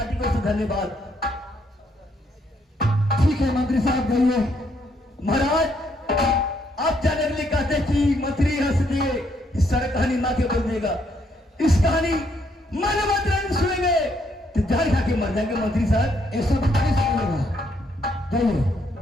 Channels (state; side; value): normal; both; correlation 0.72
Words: को से धन्यवाद। ठीक है मंत्री साहब, जाइए। महाराज, आप जाने के लिए कहते हैं कि मंत्री हंस दिए, इस सारी कहानी माँ के बोल देगा। इस कहानी मनोवती रानी सुनेंगे तो जहर खा के मर जाएंगे। मंत्री साहब, ये सब नहीं सुनेगा, जाइए।